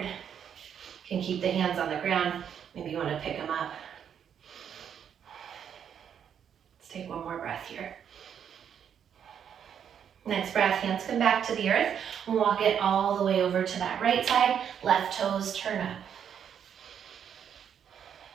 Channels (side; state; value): left; quieter; 8.4 dB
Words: You can keep the hands on the ground. Maybe you want to pick them up. Let's take one more breath here. Next breath, hands come back to the earth. Walk it all the way over to that right side. Left toes turn up.